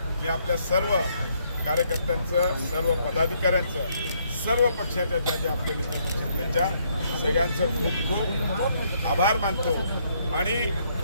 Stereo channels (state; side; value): inverted; both; correlation -0.70